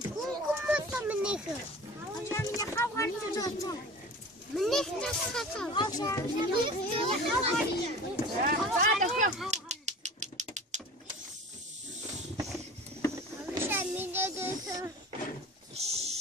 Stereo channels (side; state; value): both; normal; correlation 0.39